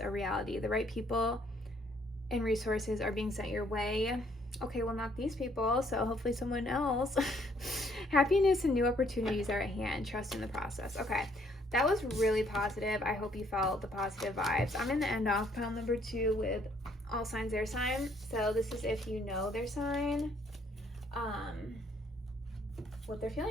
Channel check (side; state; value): both; normal; correlation 0.66